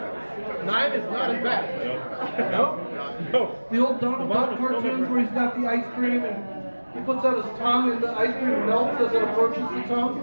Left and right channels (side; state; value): both; inverted; correlation -1.00